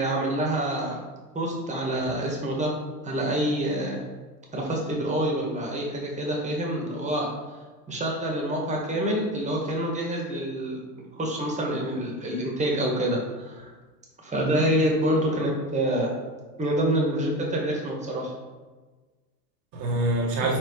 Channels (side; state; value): both; normal; correlation 0.26